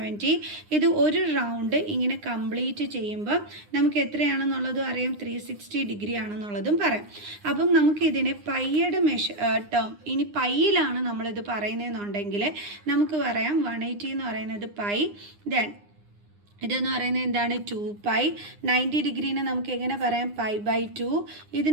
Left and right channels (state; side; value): late; left; 9.8 ms